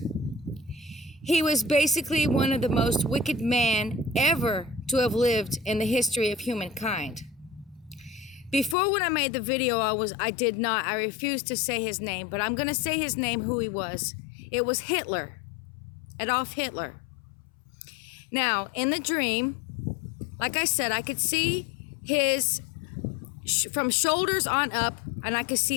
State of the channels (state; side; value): drops out; right; at 8.8 s